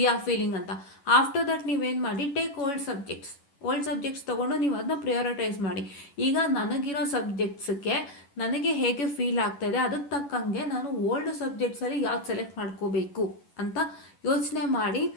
ಆರ್ ಫೀಲಿಂಗ್ ಅಂತ. ಆಫ್ಟರ್ ದಟ್ ನೀವೇನು ಮಾಡಿ, ಟೇಕ್ ಓಲ್ಡ್ ಸಬ್ಜೆಕ್ಟ್ಸ್ ತೊಗೊಂಡು ನೀವು ಅದನ್ನ ಪ್ರಿಯಾರಿಟೈಸ್ ಮಾಡಿ. ಈಗ ನನಗಿರೋ ಸಬ್ಜೆಕ್ಟ್ಸ್ಗೆ ನನಗೆ ಹೇಗೆ ಫೀಲ್ ಆಗ್ತಾಯಿದೆ, ಅದಕ್ಕೆ ತಕ್ಕಂಗೆ ನಾನು ಓಲ್ಡ್ ಸಬ್ಜೆಕ್ಟ್ಸಲ್ಲಿ ಯಾವ್ದು ಸೆಲೆಕ್ಟ್ ಮಾಡ್ಕೋಬೇಕು ಅಂತ ಯೋಚನೆ ಮಾಡಿ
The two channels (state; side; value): late; right; 11 ms